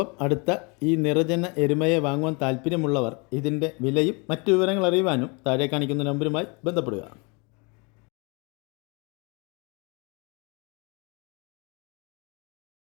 അടുത്ത ഈ നിറജന എരുമയെ വാങ്ങുവാൻ താല്പര്യമുള്ളവർ ഇതിൻ്റെ വിലയും മറ്റു വിവരങ്ങൾ അറിയുവാനും താഴെ കാണിക്കുന്ന നമ്പറുമായി ബന്ധപ്പെടുക.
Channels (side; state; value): right; quieter; 30.8 dB